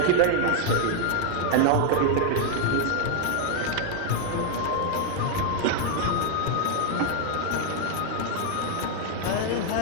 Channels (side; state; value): both; different; correlation 0.00